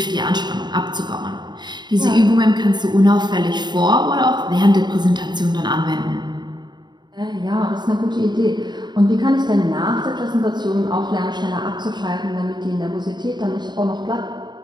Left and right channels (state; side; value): late; left; 0.21 ms